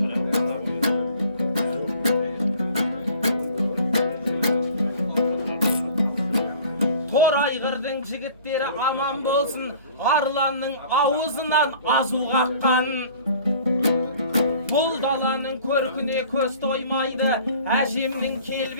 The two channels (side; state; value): both; inverted; correlation -0.49